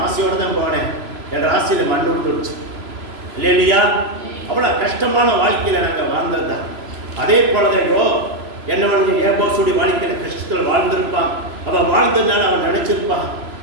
ஆசையோடு தான் போனேன். என் ராசியில் மண் விட்டுருச்சு. இல்லையா? அவ்வளோ கஷ்டமான வாழ்க்கையில் நாங்கள் வாழ்ந்தது தான். அதே போலதையோ என்னவனுக்கு ஏபோசுடைய வாழ்க்கையில் கஷ்டத்தில் வாழ்ந்திருப்பான். அவன் வாழ்ந்ததுனால அவன் நினைச்சிருப்பான்,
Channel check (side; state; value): left; late; 3.0 ms